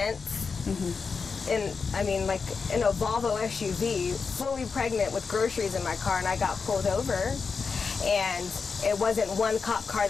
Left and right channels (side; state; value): right; quieter; 5.1 dB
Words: And I mean, like in a Volvo SUV, fully pregnant with groceries in my car, and I got pulled over. And it wasn't one cop car